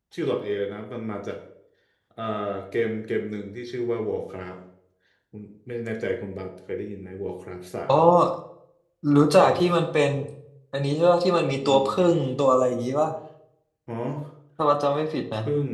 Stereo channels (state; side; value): identical; both; correlation 1.00